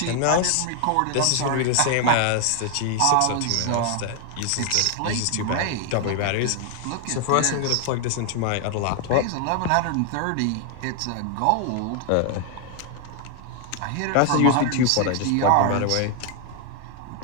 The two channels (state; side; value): different; both; correlation 0.00